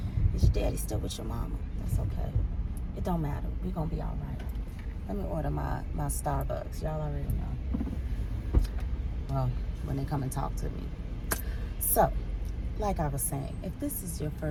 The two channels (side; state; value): both; identical; correlation 1.00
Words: Is your daddy still with your mama? That's okay. It don't matter. We're gonna be all right. Let me order my Starbucks. Y'all already know. Well, when they come and talk to me. So, like I was saying, if this is your